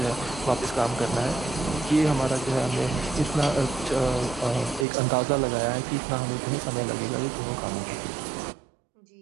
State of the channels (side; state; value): left; drops out; at 4.9 s